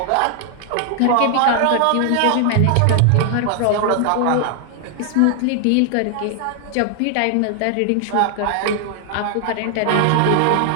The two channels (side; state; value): both; different; correlation 0.00